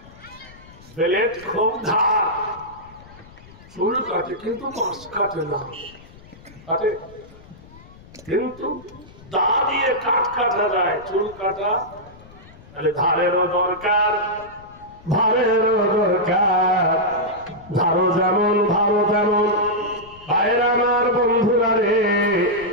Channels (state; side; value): noise; left; rumble, 22 dB below the sound